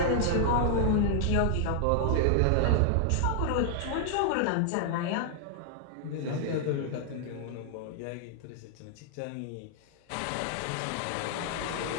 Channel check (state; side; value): different; both; correlation 0.00